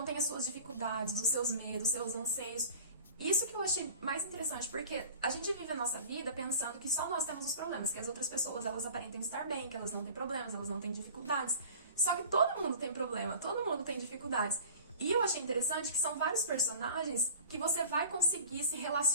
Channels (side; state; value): both; inverted; correlation -0.42